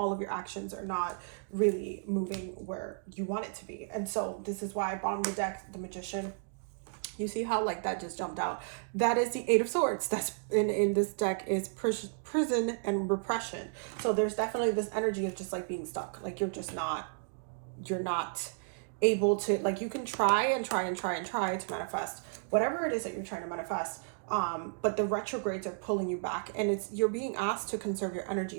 of your actions are not really moving where you want it to be. And so this is why bottom of the deck, the Magician, you see how like that just jumped out. That is the Eight of Swords. That's in this deck is prison and repression. So there's definitely this energy of just like being stuck. Like you're not able to, like, you can try and try and try and try to manifest whatever it is that you're trying to manifest, but the retrogrades are pulling you back, and you're being asked to conserve your energy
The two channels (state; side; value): silent; left; digital silence